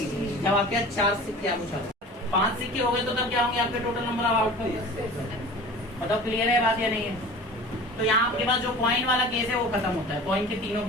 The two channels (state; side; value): normal; both; correlation 0.40